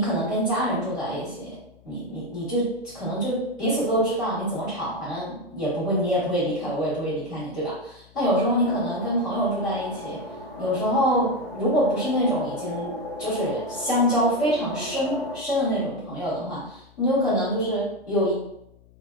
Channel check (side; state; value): left; noise; hum, 27 dB below the sound